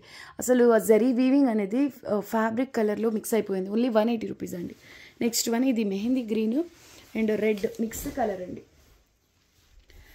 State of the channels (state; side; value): identical; both; correlation 1.00